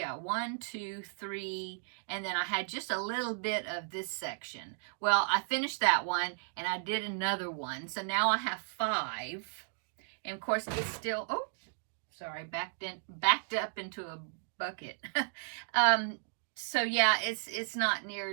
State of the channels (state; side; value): silent; left; digital silence